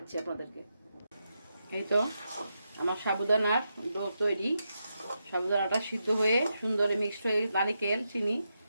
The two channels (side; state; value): both; inverted; correlation -0.85